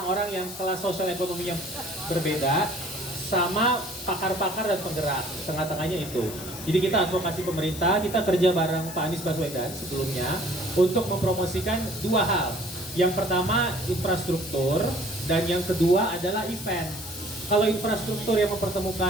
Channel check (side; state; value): left; noise; hiss, 11 dB below the sound